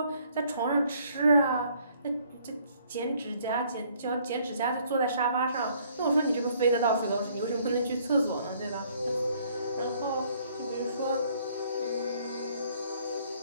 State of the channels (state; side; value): inverted; both; correlation -0.63